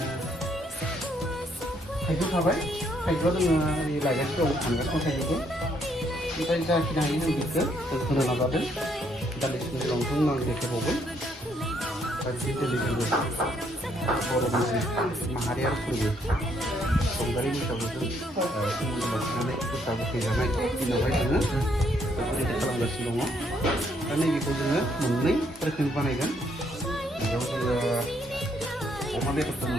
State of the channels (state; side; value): normal; both; correlation 0.70